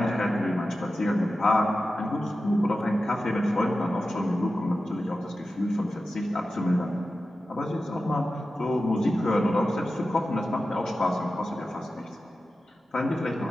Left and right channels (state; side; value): normal; both; correlation 0.93